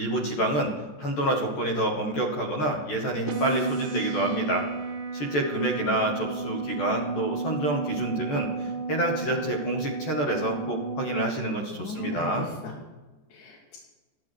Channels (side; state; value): right; late; 14 ms